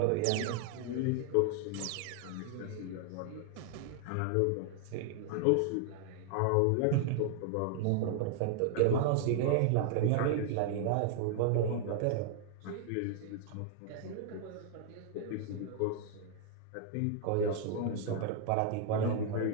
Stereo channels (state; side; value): different; both; correlation 0.00